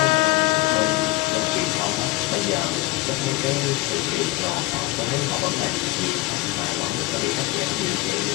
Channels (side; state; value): right; quieter; 20.0 dB